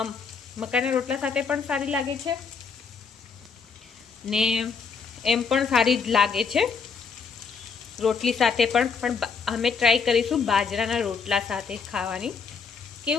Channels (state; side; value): quieter; right; 5.5 dB